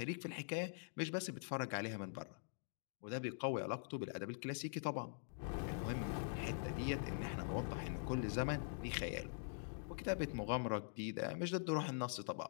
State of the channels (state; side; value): silent; right; digital silence